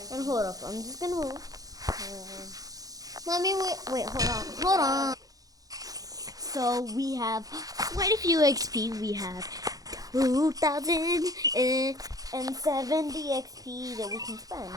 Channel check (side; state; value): left; late; 0.17 ms